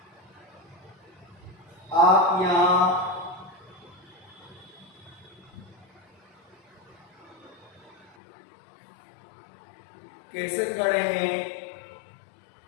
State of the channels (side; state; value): right; drops out; at 8.2 s